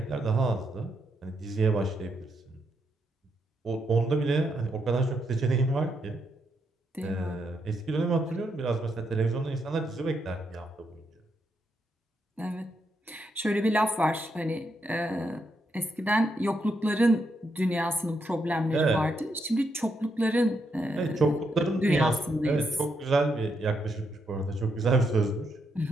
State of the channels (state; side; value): normal; both; correlation 0.80